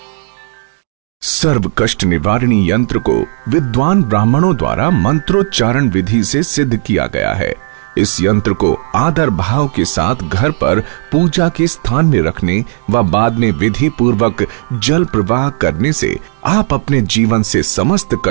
प्रवाह कर दें। सर्व कष्ट निवारणी यंत्र को विद्वान ब्राह्मणों द्वारा मंत्रोच्चारण विधि से सिद्ध किया गया है। इस यंत्र को आदर भाव के साथ घर पर पूजा के स्थान में रखने व बाद में विधि पूर्वक जल प्रवाह करने से आप अपने जीवन से समस्त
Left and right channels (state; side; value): silent; left; digital silence